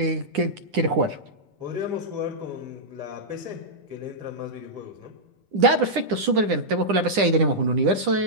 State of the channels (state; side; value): late; left; 9.9 ms